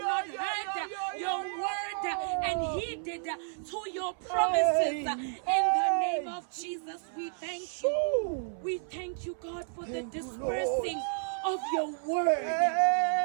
heard your word and heeded to your promises? In the name of Jesus, we thank you. We thank you, God, for the dispersing of your word,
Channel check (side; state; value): left; silent; 57 dB below the other